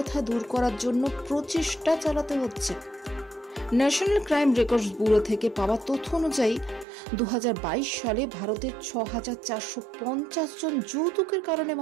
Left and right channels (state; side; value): drops out; left; at 6.9 s